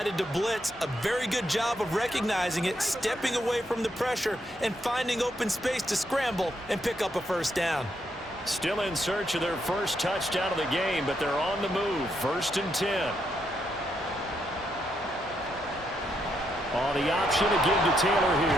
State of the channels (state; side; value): normal; both; correlation 0.78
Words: to blitz. A very good job of recognizing it, stepping away from the pressure, and finding open space to scramble and pick up a first down. Still in search of their first touchdown of the game, but they're on the move. First and 10. On the option to give to Taylor